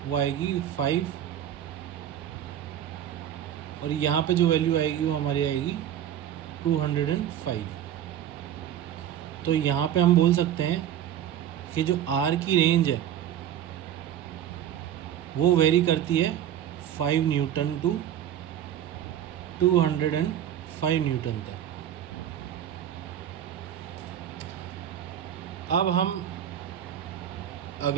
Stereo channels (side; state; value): left; quieter; 10.6 dB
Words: वो आएगी 5, और यहाँ पे जो वैल्यू आएगी वो हमारी आएगी 205। तो यहाँ पे हम बोल सकते हैं कि जो R की रेंज है वो वेरी करती है 5 न्यूटन टू 205 न्यूटन तक। अब हम